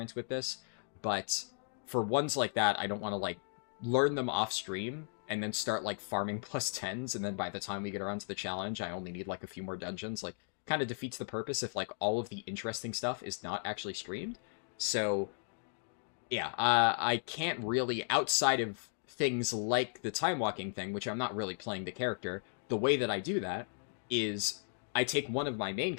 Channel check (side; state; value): right; silent; digital silence